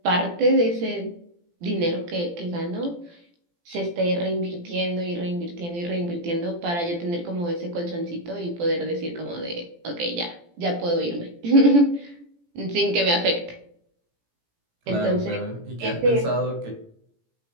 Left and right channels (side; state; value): left; late; 17 ms